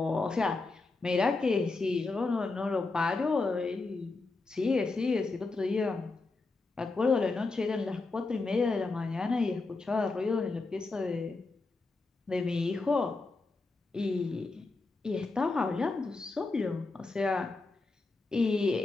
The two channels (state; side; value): quieter; right; 3.6 dB